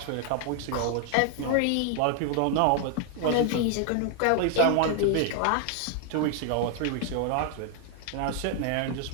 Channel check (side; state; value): both; different; correlation 0.00